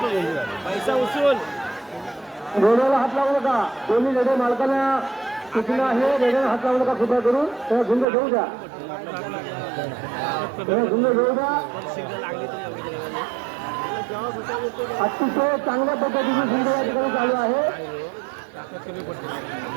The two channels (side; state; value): left; drops out; at 8.1 s